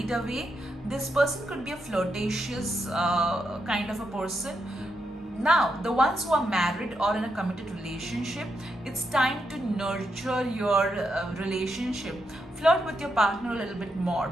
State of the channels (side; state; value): both; normal; correlation 0.83